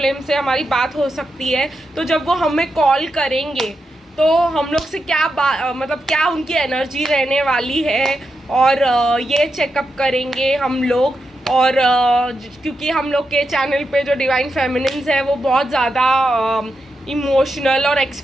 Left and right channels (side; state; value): both; normal; correlation 0.87